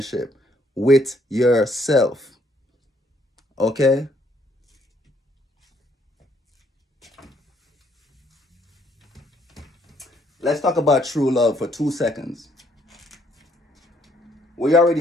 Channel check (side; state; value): both; normal; correlation 0.68